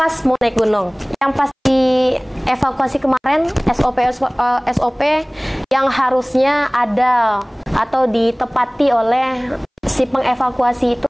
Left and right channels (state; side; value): identical; both; correlation 1.00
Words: pas mau naik gunung, yang pasti evakuasi kemarin SOP yang harusnya ada atau ditepati oleh si pengevakuasi itu